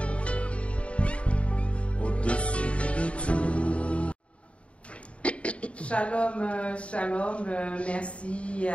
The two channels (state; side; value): late; right; 0.062 ms